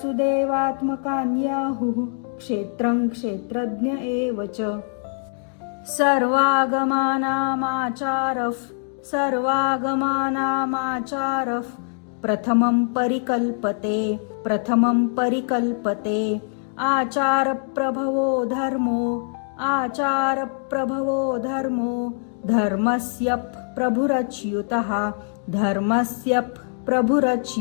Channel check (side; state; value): right; silent; 61 dB below the other